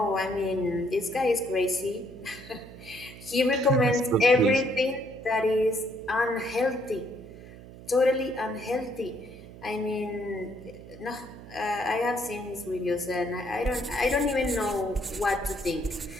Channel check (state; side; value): noise; right; hum, 16 dB below the sound